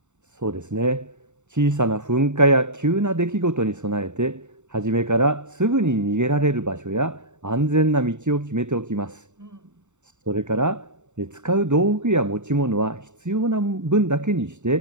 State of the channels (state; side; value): late; left; 0.84 ms